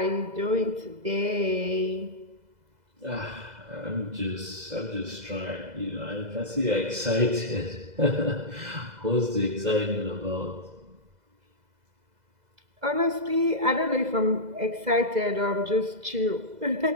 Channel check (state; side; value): late; left; 2.0 ms